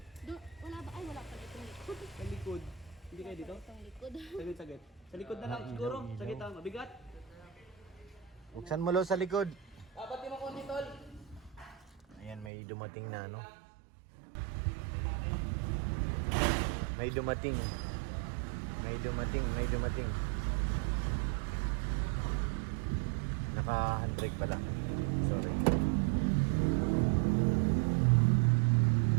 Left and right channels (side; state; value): left; drops out; at 12.5 s